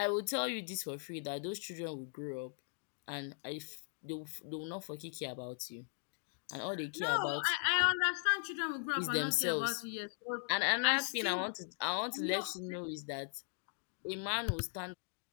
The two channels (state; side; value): silent; right; 52 dB below the other